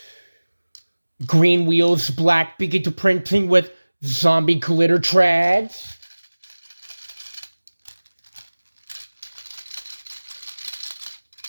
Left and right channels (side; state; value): both; inverted; correlation -1.00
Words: green wheels, black beaky to printing with zombie glitter trads.